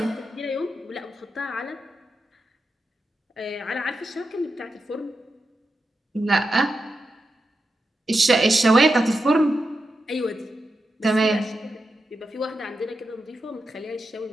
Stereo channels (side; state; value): both; normal; correlation 0.88